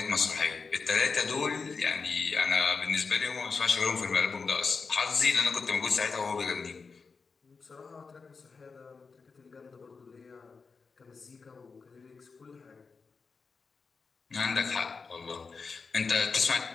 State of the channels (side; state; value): right; quieter; 4.8 dB